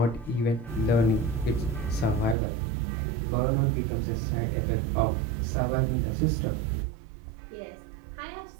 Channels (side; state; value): left; drops out; at 2.4 s